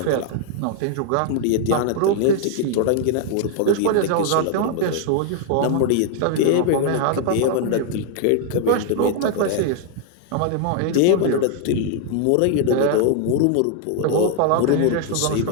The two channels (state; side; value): different; both; correlation 0.00